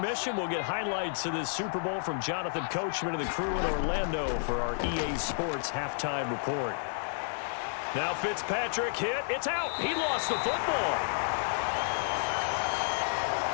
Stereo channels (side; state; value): right; silent; digital silence